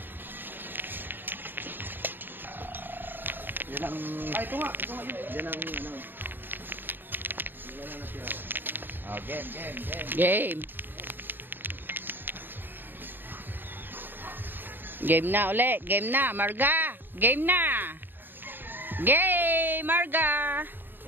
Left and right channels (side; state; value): left; late; 0.094 ms